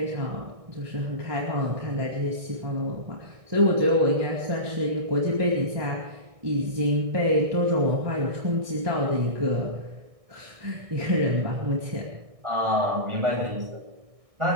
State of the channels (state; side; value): late; left; 1.6 ms